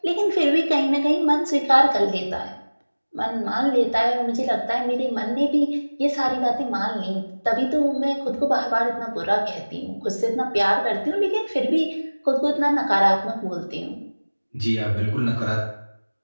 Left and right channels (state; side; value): inverted; both; correlation -1.00